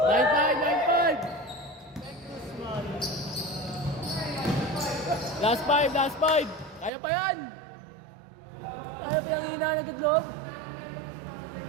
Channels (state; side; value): drops out; left; at 6.9 s